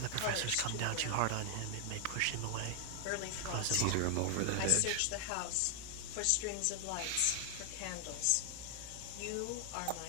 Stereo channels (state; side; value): different; both; correlation 0.00